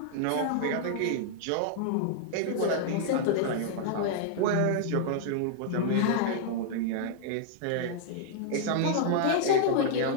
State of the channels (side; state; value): both; different; correlation -0.01